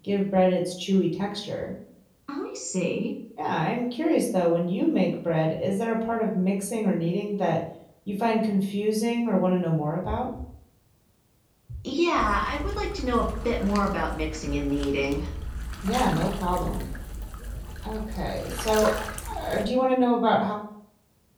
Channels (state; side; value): identical; both; correlation 1.00